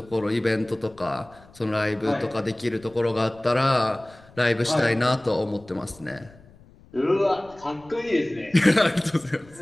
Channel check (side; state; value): left; noise; rumble, 25 dB below the sound